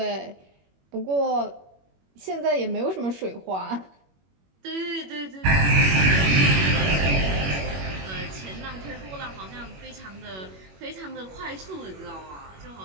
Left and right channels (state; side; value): late; left; 21 ms